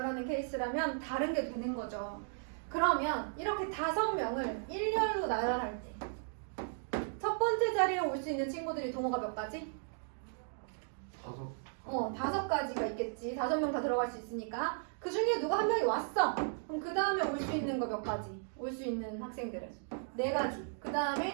케이스라면 다른 게 되는 거죠. 그러면 이렇게 5명을 일렬로 나열할 때 첫 번째 자리에 올 수 있는 친구들이 동호가 몇 가지? 5가지가 있겠지. 5명 다 들어갈 수 있으니까. 그 중에 누가 한 명이 왔어. 그럼 그 다음에 올 수 있는 거 몇 가지? 올 수 있는 학생들은 4가지. 그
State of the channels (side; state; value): left; silent; digital silence